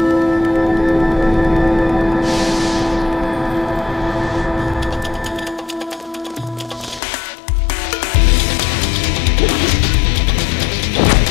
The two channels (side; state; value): right; drops out; at 7.0 s